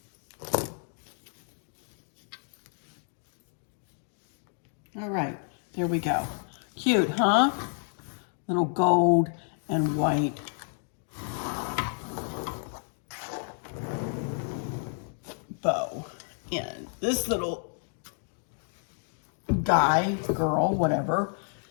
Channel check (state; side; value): silent; right; 58 dB below the other